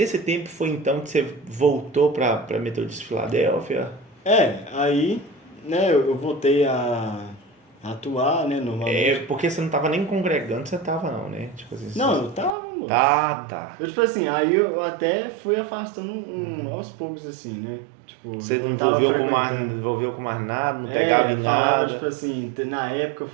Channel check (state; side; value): drops out; left; at 12.6 s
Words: tempo foi então que você voltou para Metodista de Filadélfia? Aí, né, eu voltei a atuar, né, normalmente. Porque você não estava nem congregando, você estava não, né? Tipo assim, Não, eu tava, moço. Tá. Eu, tipo assim, aí eu até fui afastando aos poucos, assim, né? Tipo, Você eu não não tava envolveu com mais nada, não pegava em falava, nada. tipo assim, na época eu